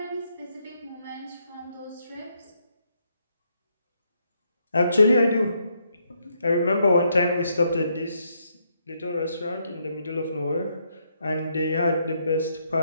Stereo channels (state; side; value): inverted; both; correlation -0.76